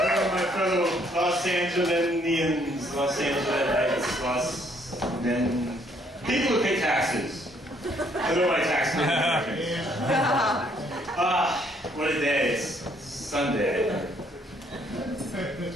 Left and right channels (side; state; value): both; normal; correlation 0.67